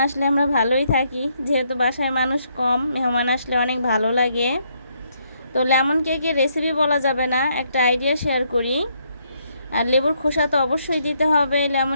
আসলে আমরা ভালোই থাকি, যেহেতু বাসায় মানুষ কম, মেহমান আসলে অনেক ভালো লাগে। তো লেমন কেকের রেসিপি বলা যাবে না, একটা আইডিয়া শেয়ার করি। আর লেবুর খোসা তো অবশ্যই দিতে হবে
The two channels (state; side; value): inverted; both; correlation -0.73